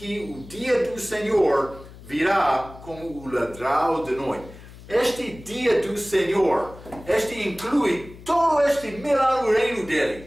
o dia do Senhor virá como o ladrão de noite. Este dia do Senhor, inclui todo este milagre reino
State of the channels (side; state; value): left; noise; hum, 18 dB below the sound